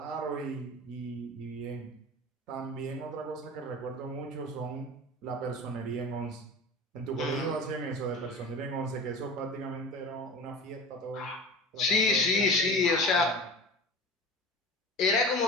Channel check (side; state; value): both; normal; correlation 0.35